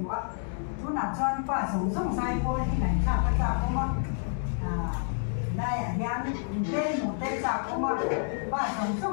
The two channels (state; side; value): silent; right; digital silence